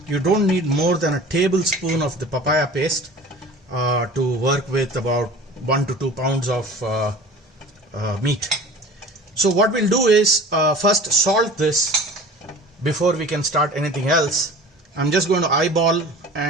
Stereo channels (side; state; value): both; normal; correlation 0.41